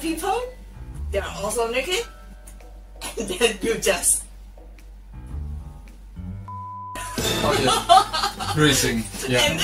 they are also naked, and then you just... Oh yeah, cruising, yeah.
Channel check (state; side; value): identical; both; correlation 1.00